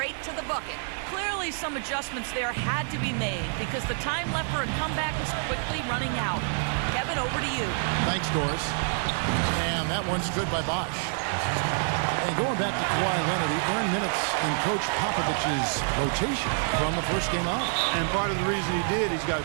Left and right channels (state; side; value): silent; left; 60 dB below the other